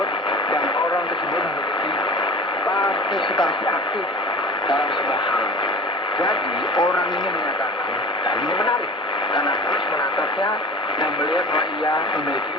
dan orang tersebut memiliki partisipasi aktif dalam sebuah hal. Jadi orang ini menyatakan, dan ini menarik karena terus menatapnya dan melihat bahwa ia memiliki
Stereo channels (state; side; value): normal; both; correlation 0.38